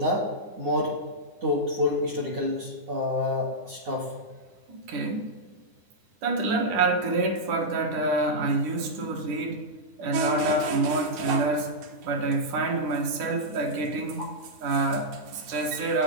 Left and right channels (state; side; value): late; left; 9.7 ms